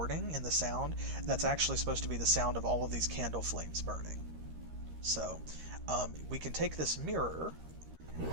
in the sound. That's actually supposed to be the sound of all of these candle flames burning. So, we can take this mirror,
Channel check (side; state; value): left; late; 13 ms